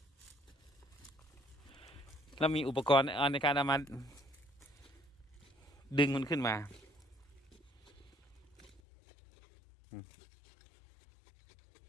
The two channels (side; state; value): right; drops out; at 8.8 s